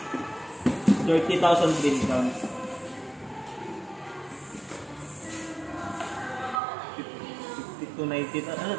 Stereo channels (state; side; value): drops out; left; at 6.6 s